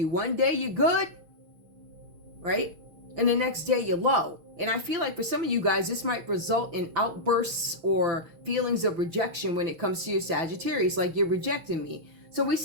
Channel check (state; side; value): late; left; 6.3 ms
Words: One day you're good, right? And the next day you're low. And I feel like for some of you guys, this might result in outbursts or feelings of rejection when it comes to your Sagittarius, like you're rejecting me. So we